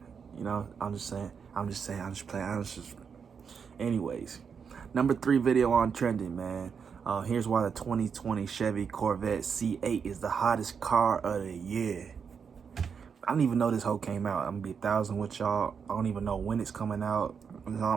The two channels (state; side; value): quieter; left; 6.5 dB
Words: You know, I'm just playing. Anyways, number 3 video on trending, man. Here's why the 2020 Chevy Corvette C8 is the hottest car of the year. I don't even know this whole came out. I'm gonna be 1,000 with y'all. I don't even know when it's coming out.